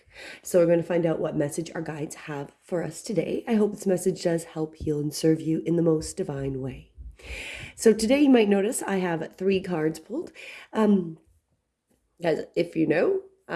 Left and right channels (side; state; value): both; identical; correlation 1.00